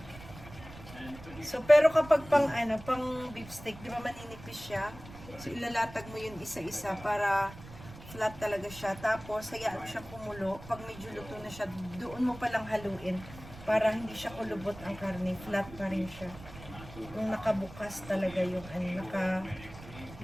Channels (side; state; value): right; noise; rumble, 16 dB below the sound